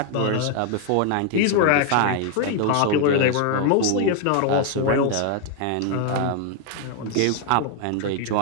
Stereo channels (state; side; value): different; both; correlation 0.00